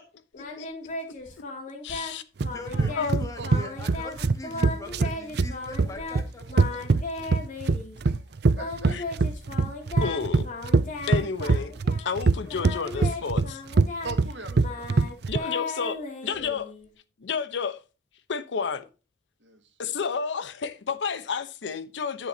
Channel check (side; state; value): both; normal; correlation 0.55